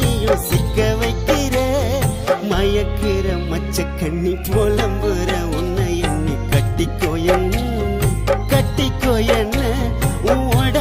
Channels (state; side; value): identical; both; correlation 1.00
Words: நீயும் சிக்க வைக்கிற. மயக்கிற மச்ச கண்ணி புலம்புற உன்னை எண்ணி கட்டிக்கோ என்ன, கட்டிக்கோ என்ன, உன்